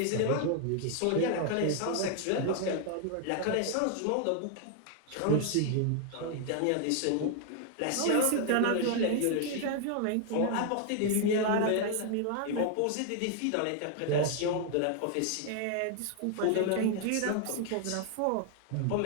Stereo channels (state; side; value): different; both; correlation 0.00